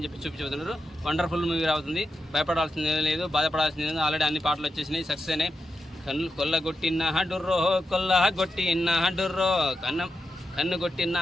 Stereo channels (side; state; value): both; normal; correlation 0.87